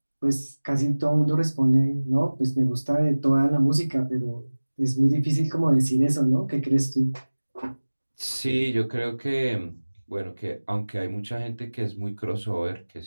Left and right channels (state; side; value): inverted; both; correlation -1.00